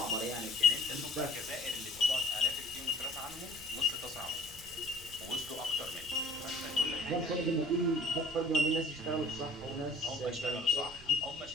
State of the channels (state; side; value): noise; right; rumble, 20 dB below the sound